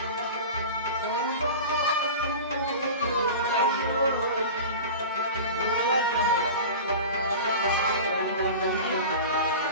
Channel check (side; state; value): both; inverted; correlation -0.32